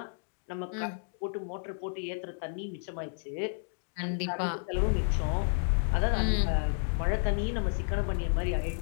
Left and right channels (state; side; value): silent; right; digital silence